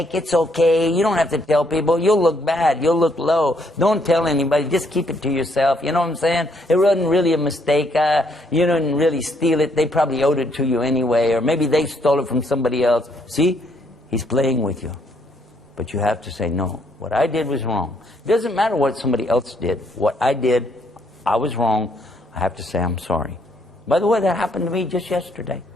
It's okay. You don't have to tell people. You'll look bad. You'll look low. Don't tell anybody. Just keep it to yourself. You know what I'm saying? It wasn't really a mistake. You didn't really steal it. They probably owed it to you anyway. Or maybe they stole it from somebody else. See? He's playing with you. But you have to say, no, what I did was wrong. It doesn't matter what somebody else did. What I did, I was wrong. I have to say I'm sorry. By the way, that happened to me just yesterday.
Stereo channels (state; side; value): normal; both; correlation 0.71